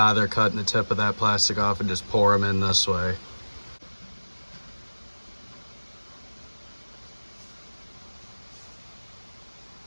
cutting the tip of that plastic off and just pour them in this way.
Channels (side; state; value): both; inverted; correlation -1.00